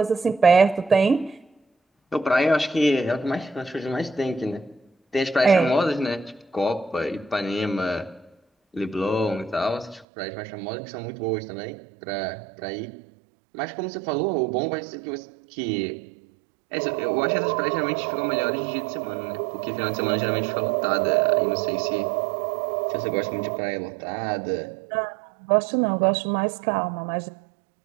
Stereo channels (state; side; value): drops out; left; at 10.1 s